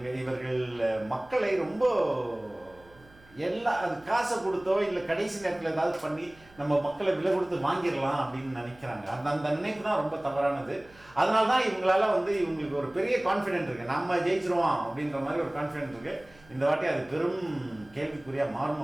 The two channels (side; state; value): right; noise; hum, 26 dB below the sound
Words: இவர்கள் மக்களை ரொம்ப அது காசை கொடுத்தோ இல்லை கடைசி நேரத்தில் ஏதாவது பண்ணி நம்ம மக்களை விலை கொடுத்து வாங்கிடலாம் அப்படின்னு நினைக்கிறாங்க. அந்த நினைப்பு தான் ரொம்ப தவறானது. அதனால தான் இவங்களால இவங்களுக்கு ஒரு பெரிய கான்ஃபிடென்ட் இருக்குது, நம்ம ஜெயிச்சிருவோம் அப்படின்ற மாதிரி ஒரு கான்ஃபிடென்ட் இருக்குது. இந்த வாட்டி அது பெரும் கேள்விக்குறியாக மாறும்